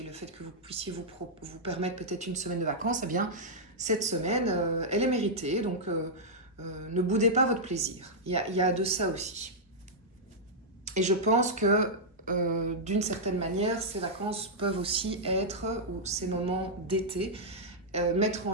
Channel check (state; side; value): normal; both; correlation -0.07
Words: le fait que vous puissiez vous permettre peut-être une semaine de vacances, eh bien, cette semaine, elle est méritée. Donc, ne boudez pas votre plaisir. Il y a de ça aussi. Et je pense que d'une certaine manière, ces vacances peuvent aussi être, ou ces moments d'été, mettre en